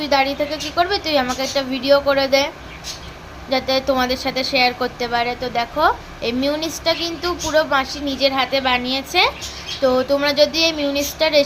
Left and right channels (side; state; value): both; identical; correlation 1.00